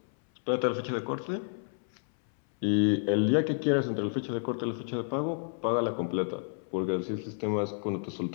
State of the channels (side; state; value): right; silent; 58 dB below the other